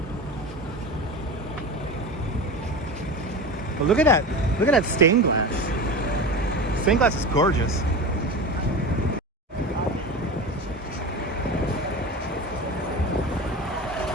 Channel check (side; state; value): both; normal; correlation 0.28